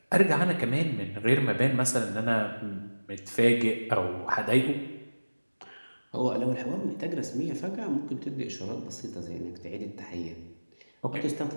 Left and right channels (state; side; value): inverted; both; correlation -1.00